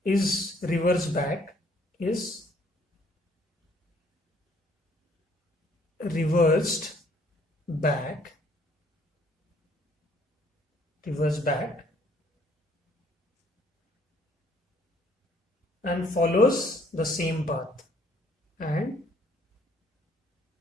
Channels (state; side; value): normal; both; correlation 0.63